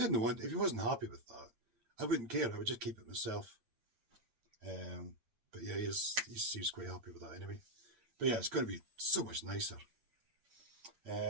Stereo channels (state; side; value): late; left; 8.8 ms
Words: he wasn't happy with that, I wouldn't care. I would just keep it myself. But yeah, he seems quite happy with that anyway. But yeah, it's going to be so much nicer.